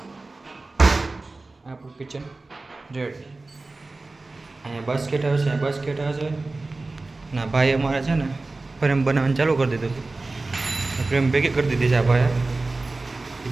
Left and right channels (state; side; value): quieter; left; 3.3 dB